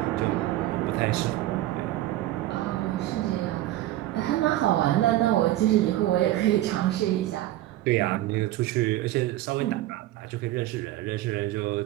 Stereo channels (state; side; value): quieter; left; 15.1 dB